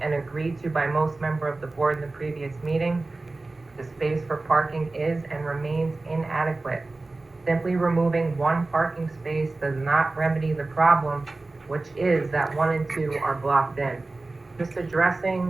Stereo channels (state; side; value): quieter; left; 3.2 dB